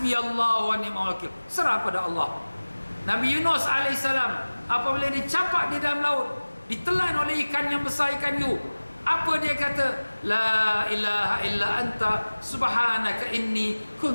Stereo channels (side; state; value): both; inverted; correlation -1.00